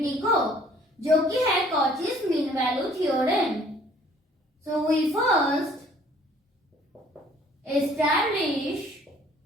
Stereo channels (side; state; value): both; normal; correlation 0.57